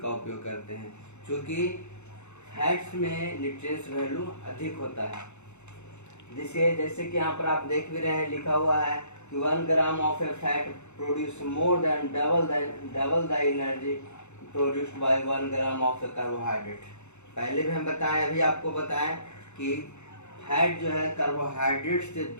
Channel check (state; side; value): late; right; 0.82 ms